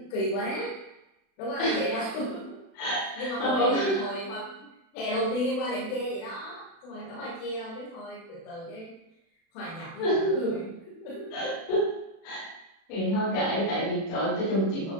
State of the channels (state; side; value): late; right; 36 ms